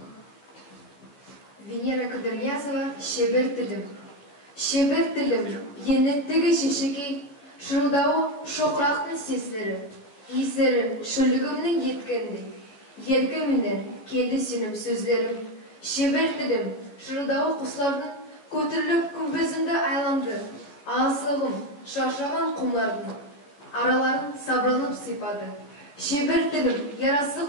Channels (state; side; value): late; right; 14 ms